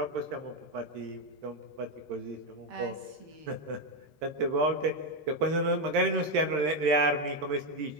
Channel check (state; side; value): late; left; 13 ms